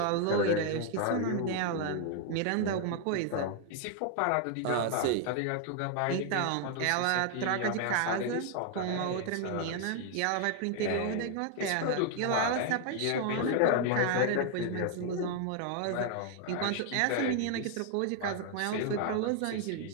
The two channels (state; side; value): different; both; correlation 0.00